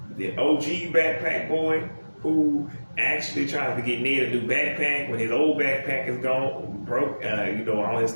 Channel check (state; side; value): inverted; both; correlation -1.00